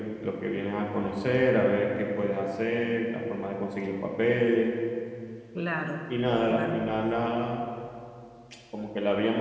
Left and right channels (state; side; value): identical; both; correlation 1.00